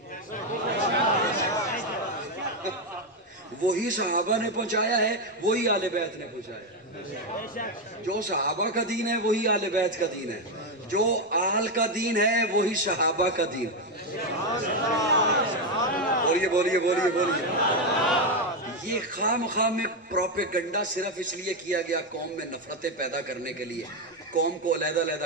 وہی صحابہ نے پہنچایا ہے، وہی اہل بیت نے پہنچایا. جو صحابہ کا دین ہے وہی اہل بیت کا دین ہے، جو آل کا دین ہے وہی صحابہ کا دین. بولیے بولیے بولیے بولیے. یہ خام میں پروپیگنڈا صرف اس لیے کیا گیا قوم میں نفرتیں پیدا کرنے کے لیے، قوم کو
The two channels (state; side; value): normal; both; correlation 0.07